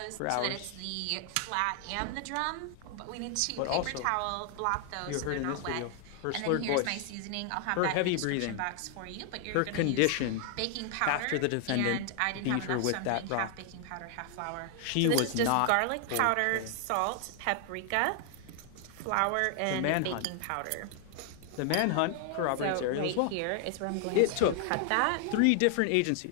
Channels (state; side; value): different; both; correlation 0.00